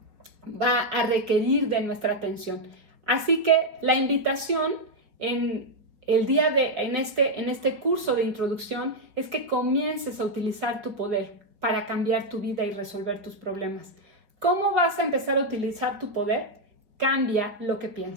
a requerir de nuestra atención. Así que la invitación en este curso de introducción es que comiences a utilizar tu poder para cambiar tu vida y resolver tus problemas. ¿Cómo vas a empezar a utilizar tu poder? Cambia lo que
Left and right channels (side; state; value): left; late; 4.9 ms